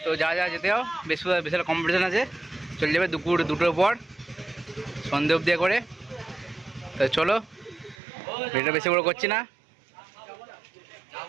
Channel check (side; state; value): left; drops out; at 8.0 s